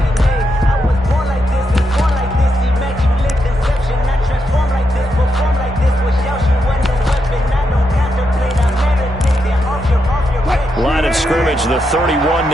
Line of scrimmage, the 31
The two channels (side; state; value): both; normal; correlation 0.83